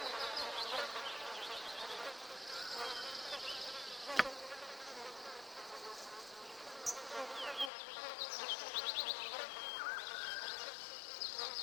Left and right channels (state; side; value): drops out; right; at 7.7 s